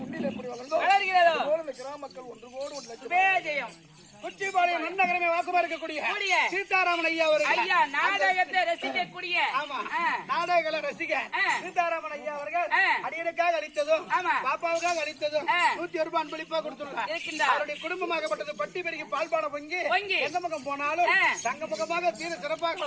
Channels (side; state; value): both; identical; correlation 1.00